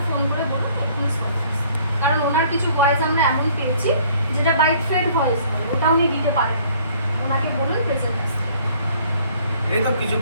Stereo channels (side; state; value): both; inverted; correlation -0.58